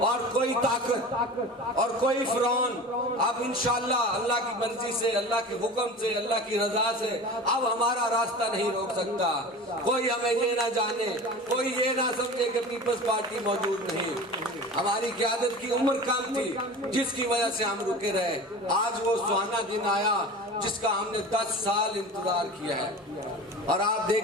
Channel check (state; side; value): normal; both; correlation 0.35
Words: کوئی طاقت اور کوئی فرعون اب انشاءاللہ اللہ کی مرضی سے، اللہ کے حکم سے، اللہ کی رضا سے اب ہمارا راستہ نہیں روک سکتا۔ کوئی ہمیں یہ نہ جانے، کوئی یہ نہ سمجھے کہ پیپلز پارٹی موجود نہیں۔ ہماری قیادت کی عمر کم تھی جس کی وجہ سے ہم رکے رہے، آج وہ سہانا دن آیا جس کا ہم نے 10 سال انتظار کیا ہے۔ اور آپ